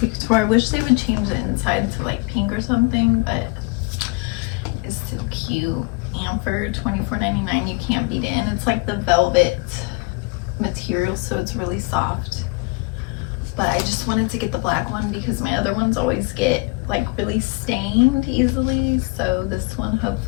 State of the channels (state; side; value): quieter; right; 27.9 dB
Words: Couture. I wish they would change the inside to like pink or something, but it's still cute. And for $24.99, you can't beat it. And it's like the velvet material, so it's really soft. But I just wanted to get the black one because my other ones always get like really stained easily, so this one